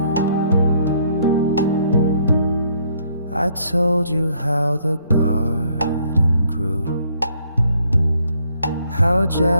told you how the garden grew, how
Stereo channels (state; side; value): inverted; both; correlation -0.67